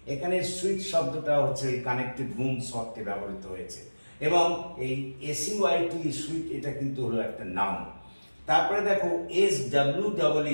এখানে সুইট শব্দটা হচ্ছে এই কানেক্টেড রুমস অর্থে ব্যবহৃত হয়েছে। এবং এই এসইউআইটি সুইট, এটা কিন্তু হলো একটা নাউন। তারপরে দেখো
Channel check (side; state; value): both; inverted; correlation -1.00